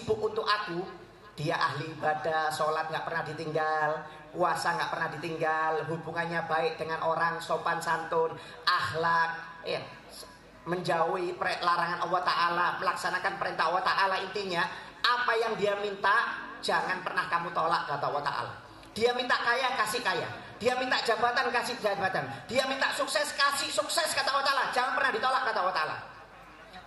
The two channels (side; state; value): both; identical; correlation 1.00